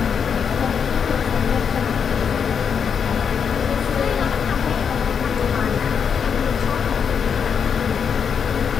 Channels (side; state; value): right; quieter; 6.9 dB